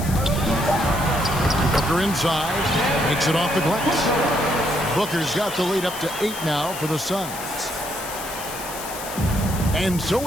Booker inside, makes it off the glass. Booker's got the lead up to 8 now for the Suns. And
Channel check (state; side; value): noise; left; hiss, 10 dB below the sound